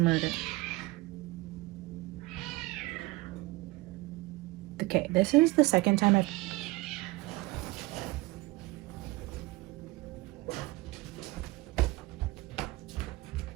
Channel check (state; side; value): quieter; left; 21.3 dB